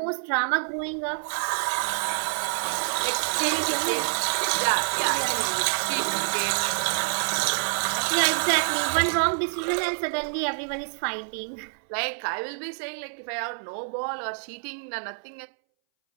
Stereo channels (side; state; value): left; silent; 60 dB below the other